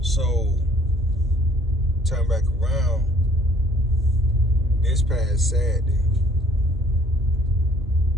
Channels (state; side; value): noise; right; rumble, 19 dB below the sound